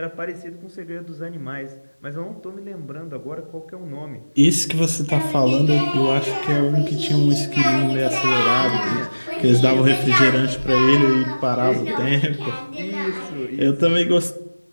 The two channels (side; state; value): both; inverted; correlation -1.00